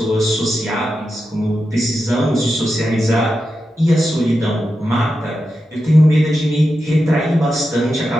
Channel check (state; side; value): normal; both; correlation 0.89